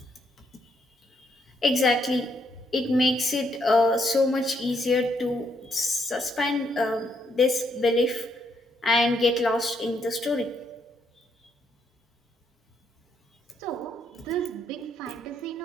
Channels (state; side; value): normal; both; correlation 0.74